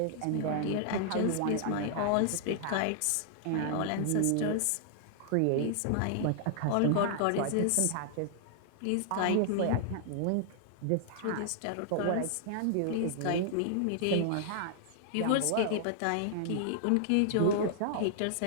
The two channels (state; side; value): different; both; correlation -0.01